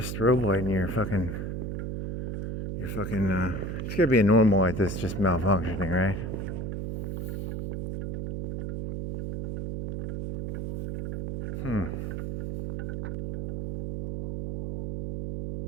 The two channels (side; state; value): right; noise; hum, 3 dB below the sound